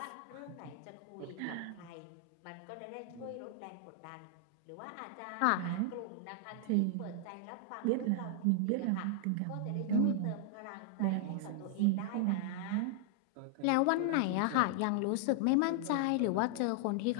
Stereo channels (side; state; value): both; different; correlation 0.00